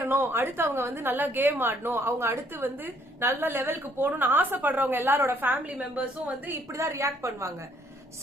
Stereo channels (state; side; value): normal; both; correlation 0.66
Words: அடுத்து அவங்க வந்து நல்லா கேம் ஆடணும், அவங்க அடுத்து வந்து நல்ல லெவலுக்கு போகணும்னு ஆசைப்படுறவங்க எல்லாரோட ஃபேமிலி மெம்பர்ஸும் வந்து இப்படிதான் ரியாக்ட் பண்ணுவாங்க.